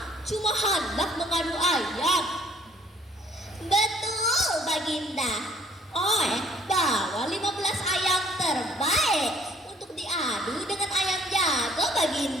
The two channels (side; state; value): both; normal; correlation 0.60